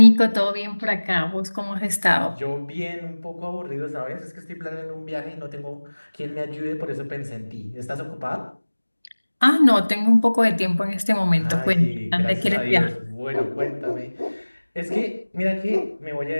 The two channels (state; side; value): inverted; both; correlation -1.00